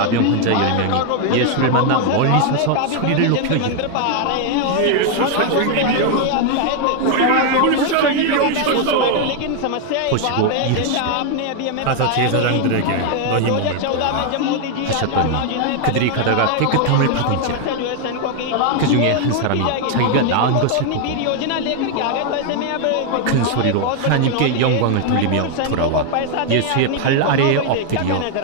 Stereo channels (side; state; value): both; different; correlation 0.01